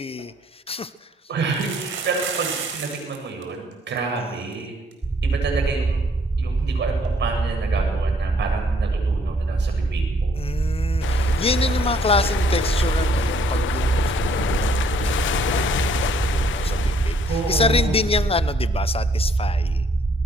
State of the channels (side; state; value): both; normal; correlation 0.65